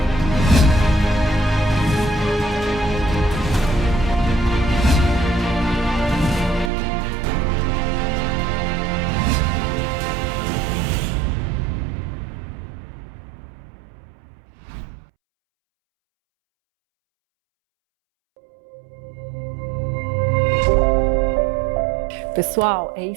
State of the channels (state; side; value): drops out; left; at 6.7 s